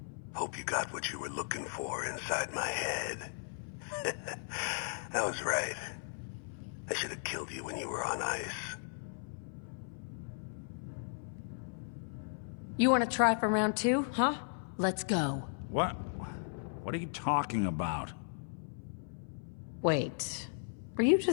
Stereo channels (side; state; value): right; silent; 54 dB below the other